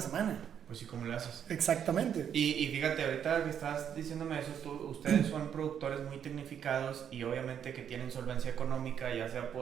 semana. Pues sí, ¿cómo le haces? Exactamente. Y fíjate, ahorita que estás diciéndome eso, ustedes son productores muy tecnificados y obviamente que tienen solvencia económica, ya sea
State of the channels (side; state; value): left; quieter; 8.7 dB